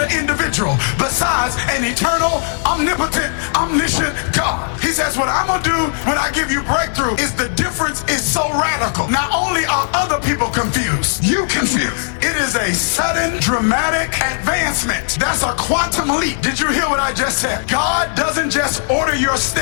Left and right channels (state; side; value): silent; right; digital silence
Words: individual besides an eternal, omnipotent, omniscient God. He says, what I'm gonna do when I give you breakthrough is the difference is so radical. Not only are other people confused, you confused. It is a sudden, dramatic advancement. That's a quantum leap. Did you hear what I just said? God doesn't just order your